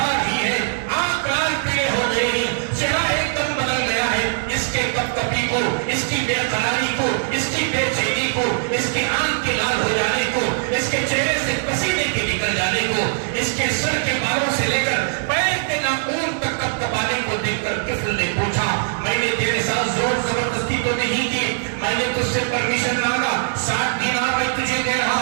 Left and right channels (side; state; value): left; silent; digital silence